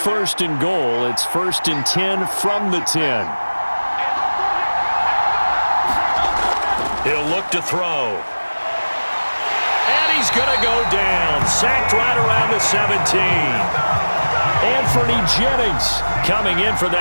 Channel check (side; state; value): both; inverted; correlation -1.00